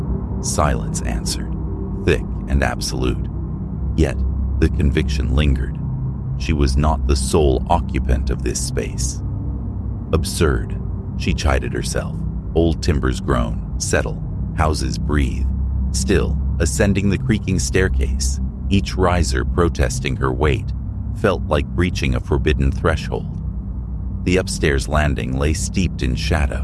Silence answered, thick and absolute. Yet the conviction lingered. She was not the sole occupant of this space. Absurd, she chided herself. Old timbers groan, settle, houses breathe. Still, ascending the creaking staircase, each riser protesting her weight, felt like breaching a forbidden threshold. The upstairs landing lay steeped in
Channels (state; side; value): identical; both; correlation 1.00